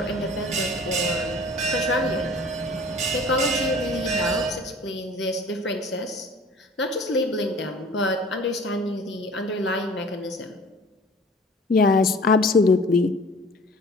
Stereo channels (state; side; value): normal; both; correlation 0.46